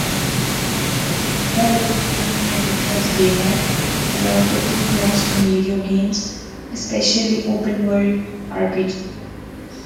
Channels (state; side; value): identical; both; correlation 1.00